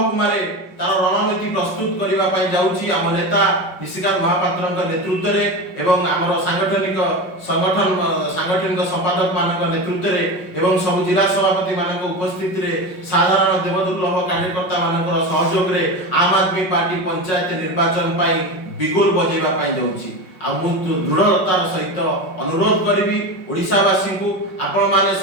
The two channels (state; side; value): late; right; 5.4 ms